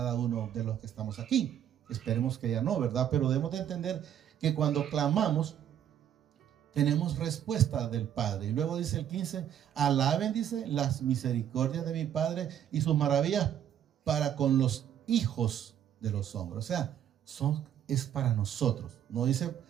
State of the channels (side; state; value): left; quieter; 10.0 dB